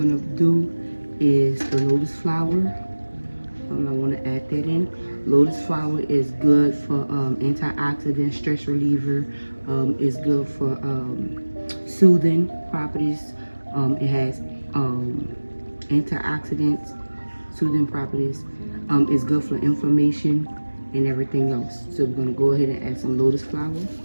do is the lotus flower. I want to add that in. Lotus flower is good for antioxidant, stress reliever. It's good for soothing properties. It has antioxidants, soothing properties. It's good for inflammation and everything else. So we're going to go ahead and add some lotus flower.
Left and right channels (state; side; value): inverted; both; correlation -1.00